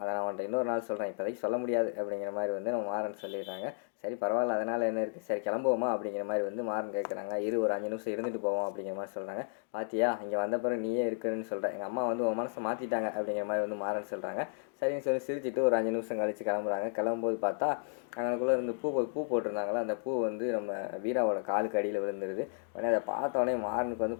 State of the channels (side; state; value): right; silent; digital silence